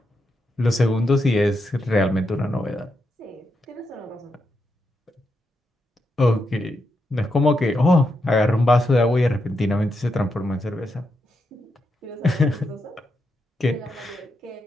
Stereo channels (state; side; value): normal; both; correlation 0.84